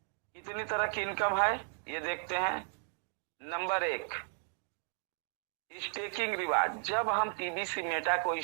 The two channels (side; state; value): left; silent; 54 dB below the other